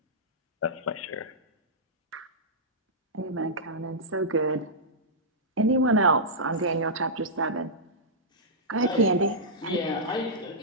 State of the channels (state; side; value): normal; both; correlation -0.13